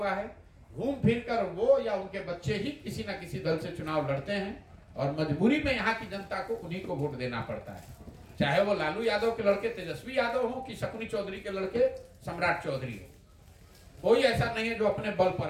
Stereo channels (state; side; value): identical; both; correlation 1.00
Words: है। घूम फिर कर वो या उनके बच्चे ही किसी न किसी दल से चुनाव लड़ते हैं और मजबूरी में यहाँ की जनता को उन्हीं को वोट देना पड़ता है। चाहे वो लालू यादव के लड़के तेजस्वी यादव हो कि शकुनी चौधरी के लड़के सम्राट चौधरी हो, कोई ऐसा नहीं है जो अपने बल पर